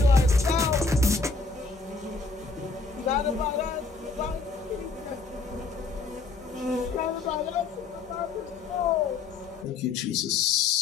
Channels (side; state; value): right; quieter; 4.2 dB